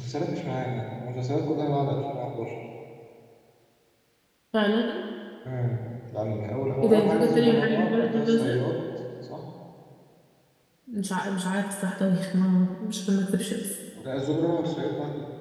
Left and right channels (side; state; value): both; identical; correlation 1.00